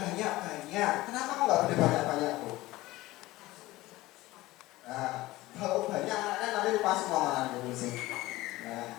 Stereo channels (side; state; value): right; quieter; 18.4 dB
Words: Kenapa kok nggak boleh banyak-banyak Bu? Nah, kalau banyak anaknya nanti lupa semua malah sih. Nah,